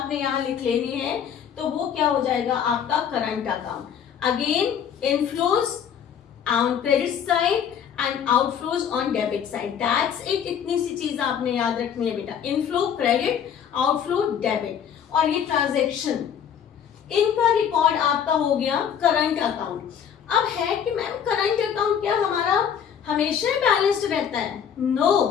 यहाँ लिख लेनी है। तो वो क्या हो जाएगा आपका current account. Again inflows on credit side and outflows on debit side, that's it. इतनी सी चीज आपने याद रखनी है बेटा, इनफ्लो क्रेडिट, आउटफ्लो डेबिट। और ये ट्रांजैक्शन, इनका रिकॉर्ड आपका हो गया करंट अकाउंट। अब है कि मैम करंट अकाउंट क्या हमारा हमेशा बैलेंस्ड रहता है?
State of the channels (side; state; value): right; quieter; 8.3 dB